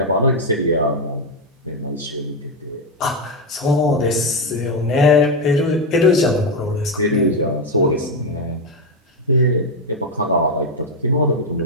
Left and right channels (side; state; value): both; normal; correlation 0.06